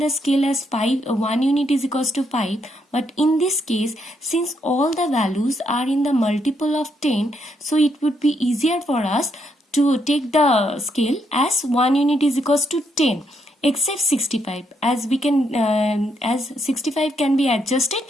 scale as 5, 1 unit is equals to 5. But in this case, since all the values are in the multiple of 10, so it would be easier for us to take the scale as 1 unit is equals to 10. Except 65, as we can, as 65 can be adjusted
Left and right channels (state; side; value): normal; both; correlation 0.76